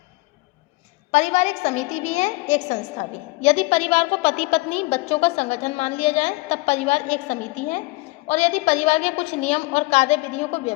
परिवार एक समिति भी है, एक संस्था भी। यदि परिवार को पति पत्नी बच्चों का संगठन मान लिया जाए तब परिवार एक समिति है, और यदि परिवार के कुछ नियम और कार्य विधियों को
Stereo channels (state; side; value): quieter; right; 23.1 dB